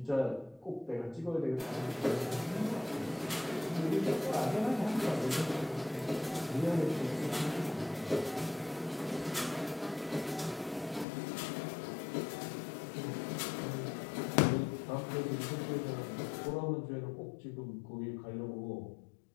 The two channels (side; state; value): right; drops out; at 11.1 s